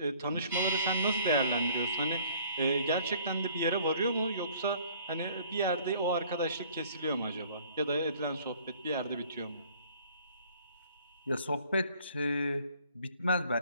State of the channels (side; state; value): both; inverted; correlation -0.56